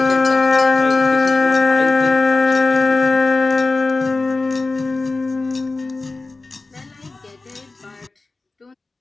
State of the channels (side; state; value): right; quieter; 3.4 dB